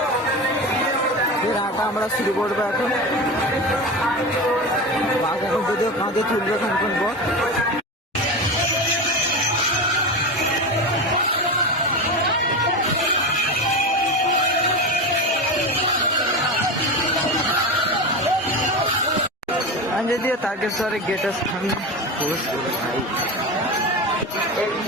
হাঁটা আমরা শুরু করবো এখন। বাঘ এখন যদিও কাঁধে তুলবে কিছুক্ষণ পর। আমি যদিও তারকেশ্বরের গেটের সামনে প্রবেশ করে ভাই,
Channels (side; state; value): both; normal; correlation 0.22